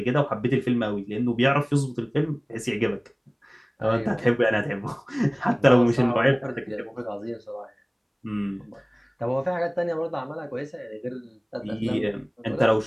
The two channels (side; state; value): both; identical; correlation 1.00